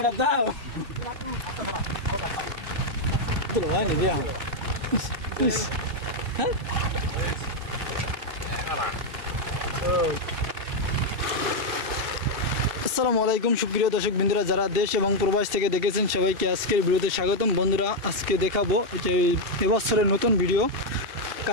দাও তো হয়নি দিয়া হ্যাঁ আসসালামু আলাইকুম সুপ্রিয় দর্শক বন্ধুরা যারা দেশ এবং প্রবাস থেকে দেখেছেন সবাইকে আজকের ভিডিওতে স্বাগতম। বন্ধুরা আজকে দেখাবো যে এবছরের নতুন ভিডিও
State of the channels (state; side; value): late; left; 2.7 ms